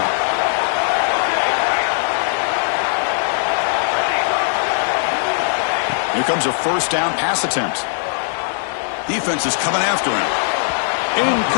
Here comes a first down pass attempt. Defense is coming after him.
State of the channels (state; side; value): silent; right; 58 dB below the other